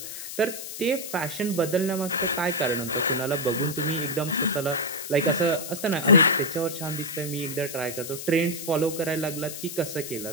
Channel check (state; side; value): noise; left; hiss, 8 dB below the sound